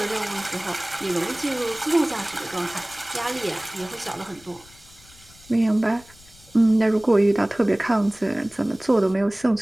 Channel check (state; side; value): noise; left; rumble, 25 dB below the sound